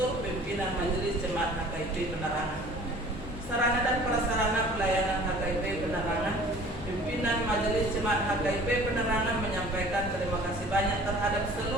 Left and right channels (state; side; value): noise; left; hum, 14 dB below the sound